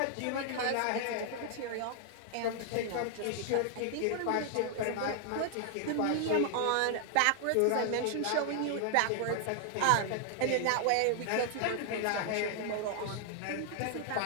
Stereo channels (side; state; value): both; different; correlation 0.00